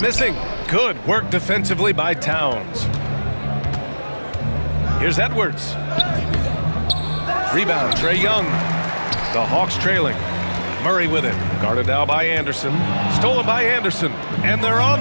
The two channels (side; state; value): both; inverted; correlation -1.00